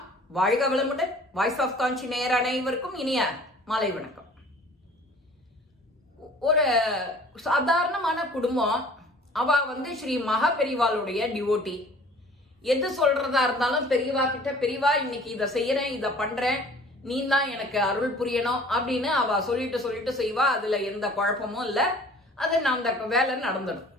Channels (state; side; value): normal; both; correlation 0.49